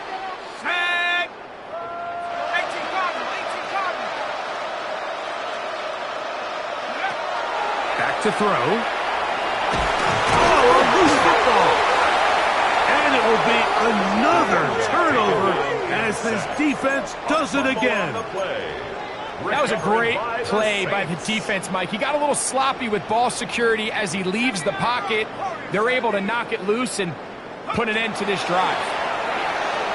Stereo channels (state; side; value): identical; both; correlation 1.00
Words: Set. 18 Cardinals. 18 Cardinals. Back to throw. Oh, a loose football. And it will be another turnover as this defense does it again. That was a great play by the defense, Mike. He got a little sloppy with ball security as he leaves the pocket. They're able to knock it loose and put an end to this drive.